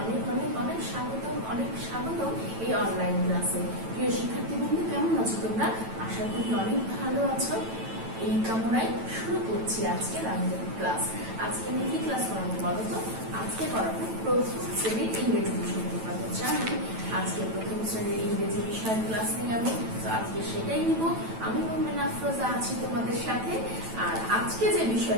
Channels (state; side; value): late; left; 9.0 ms